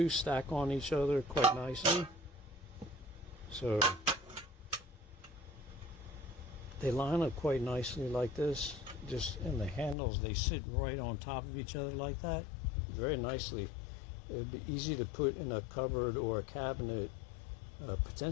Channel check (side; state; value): right; drops out; at 10.0 s